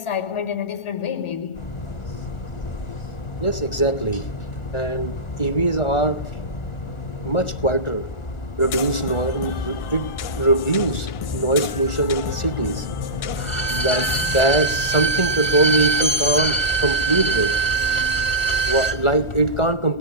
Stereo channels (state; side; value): late; right; 1.4 ms